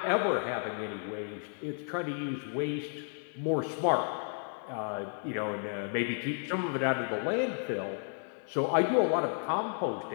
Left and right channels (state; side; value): silent; right; 56 dB below the other